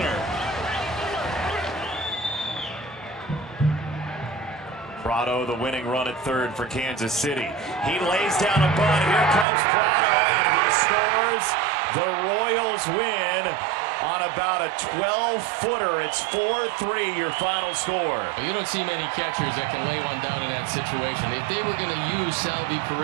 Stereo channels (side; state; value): left; drops out; at 9.5 s